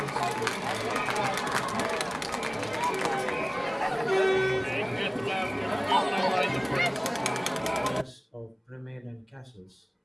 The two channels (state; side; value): identical; both; correlation 1.00